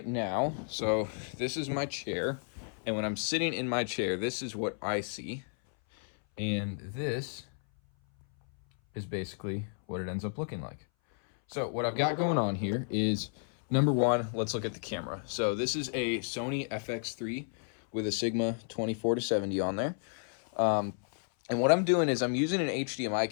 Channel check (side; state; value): right; silent; 56 dB below the other